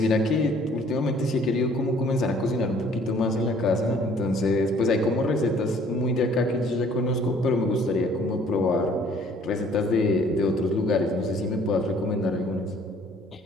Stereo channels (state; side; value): normal; both; correlation 0.57